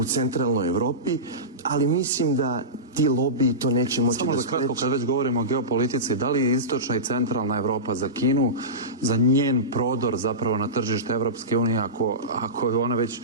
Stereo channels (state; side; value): normal; both; correlation -0.19